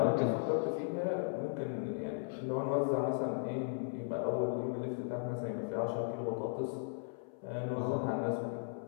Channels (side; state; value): right; silent; 53 dB below the other